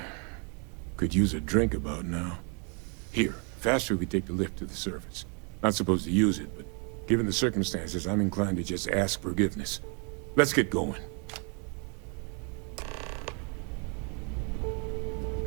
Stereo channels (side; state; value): left; quieter; 37.5 dB